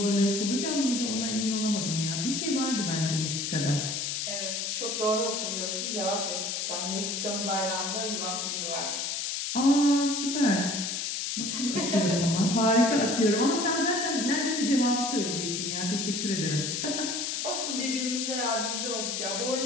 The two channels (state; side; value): noise; left; hiss, 2 dB below the sound